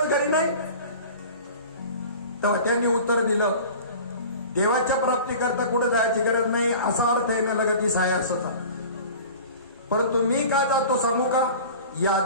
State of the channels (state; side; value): inverted; both; correlation -0.40